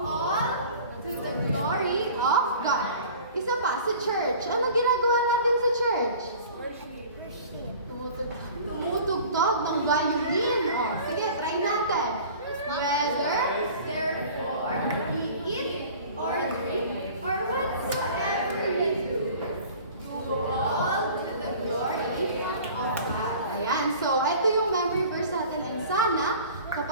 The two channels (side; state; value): both; inverted; correlation -0.44